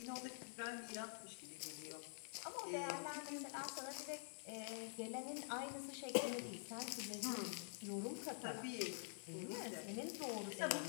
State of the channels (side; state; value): right; silent; digital silence